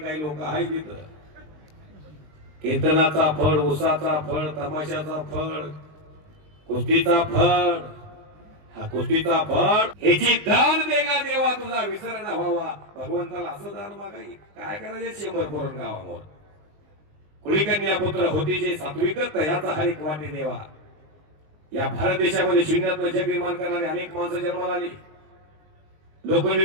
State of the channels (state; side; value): late; left; 20 ms